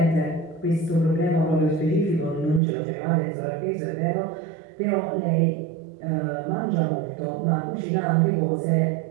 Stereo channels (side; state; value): left; drops out; at 2.6 s